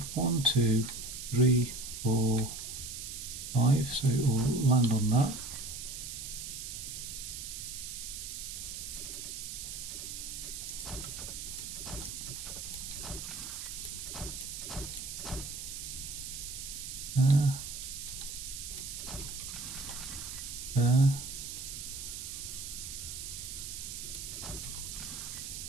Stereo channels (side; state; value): right; noise; hiss, 7 dB below the sound